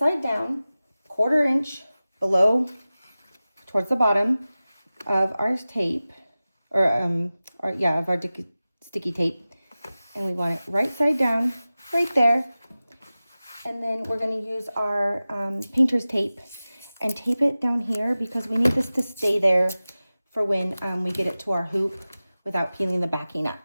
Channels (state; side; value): inverted; both; correlation -0.96